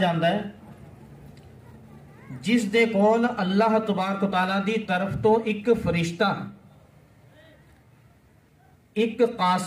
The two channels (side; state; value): both; identical; correlation 1.00